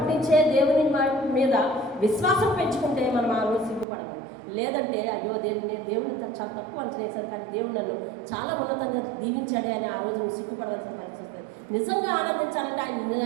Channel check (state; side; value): drops out; left; at 3.9 s